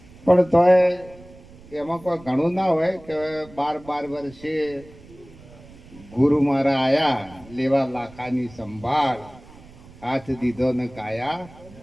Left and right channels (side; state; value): right; noise; rumble, 21 dB below the sound